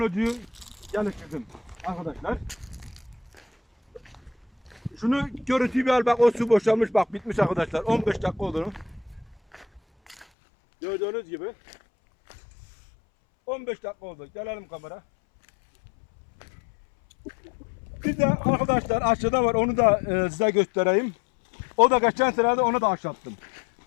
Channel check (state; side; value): drops out; right; at 10.2 s